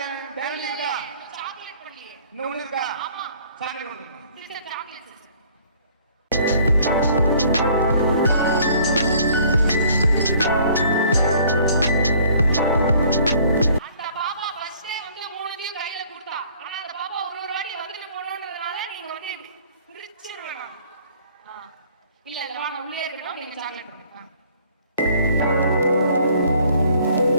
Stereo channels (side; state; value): both; inverted; correlation -0.57